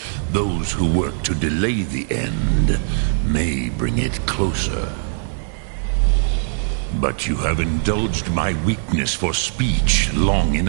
Those who work to delay the end may bring it closer. But you have indulged my weakness for speech long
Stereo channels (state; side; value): silent; left; digital silence